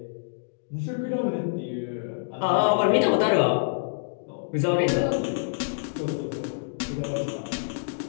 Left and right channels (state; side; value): silent; right; digital silence